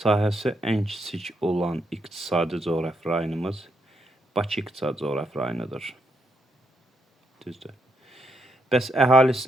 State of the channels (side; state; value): both; normal; correlation 0.79